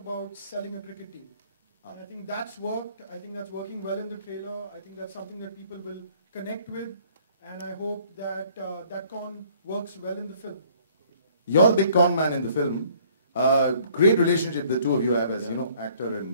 selling a cricket team? And I think that's worked. I think that's working well in the trailer. I think that's something that people will connect with. And I hope that that con works well in the film. You're the big con man in the film. Great relationship the two of you have as, actor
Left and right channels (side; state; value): both; inverted; correlation -0.59